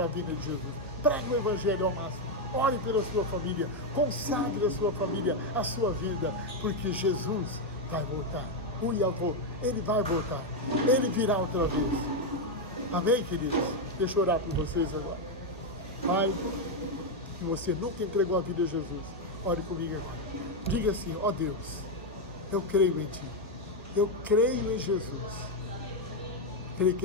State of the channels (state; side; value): normal; both; correlation 0.04